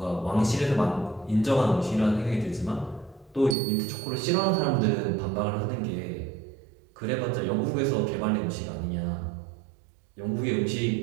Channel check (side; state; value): left; drops out; at 3.6 s